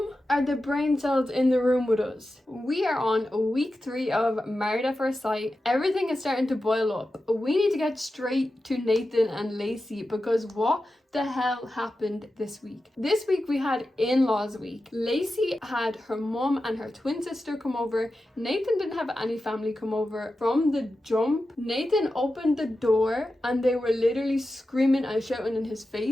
Are the brain cells in the room with us? We are on week 3 of Married at First Sight. Everything is starting to boil up. We need to get straight to Nathan and Lacey because what the hell happened this week? This week we had in-laws week. Lacey had her mum and her twin sister come over. Nathan didn't have any family come over. From the jump, Nathan opened the door and they were literally screaming and shouting in his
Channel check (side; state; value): both; normal; correlation 0.92